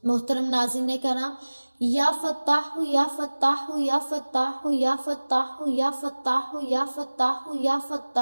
محترم ناظرین کرام، یا فتاح یا فتاح یا فتاح یا فتاح یا فتاح یا فتاح یا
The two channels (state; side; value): inverted; both; correlation -1.00